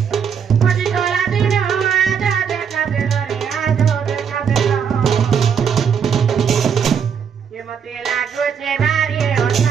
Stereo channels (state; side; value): quieter; left; 7.2 dB